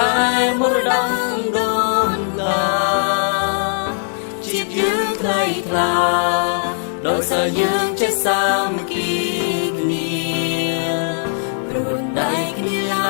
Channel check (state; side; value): silent; right; 56 dB below the other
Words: ែមរតកដូនតាជាតិយើងថ្លៃថ្លាដោយសារយើងចេះសាមគ្គីគ្នាព្រួនដៃគ្នាឡ